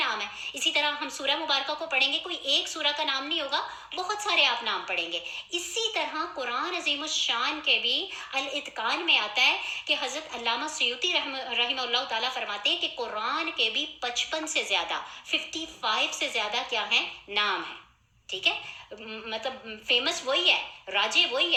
ہیں۔ اسی طرح ہم سورہ مبارکہ کو پڑھیں گے، کوئی ایک سورہ کا نام نہیں ہوگا، بہت سارے آپ نام پڑھیں گے۔ اسی طرح قرآن عظیم الشان کے بھی الاتقان میں آتا ہے کہ حضرت علامہ سیوطی رحمہ اللہ تعالیٰ فرماتے ہیں کہ قرآن کے بھی 55 سے زیادہ 55 سے زیادہ کیا ہیں؟ نام ہیں، ٹھیک ہے؟ مطلب فیمس وہی ہے، راجے وہی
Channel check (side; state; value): both; identical; correlation 1.00